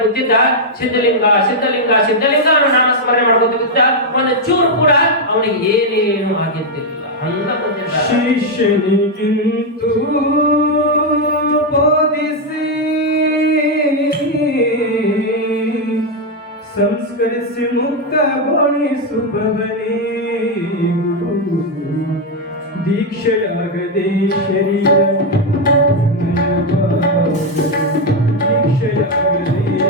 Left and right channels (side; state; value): both; normal; correlation 0.02